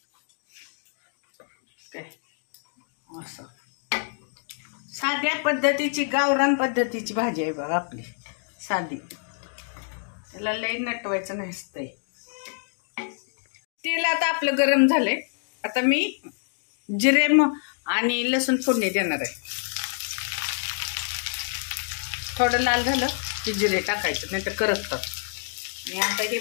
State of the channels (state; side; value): silent; right; digital silence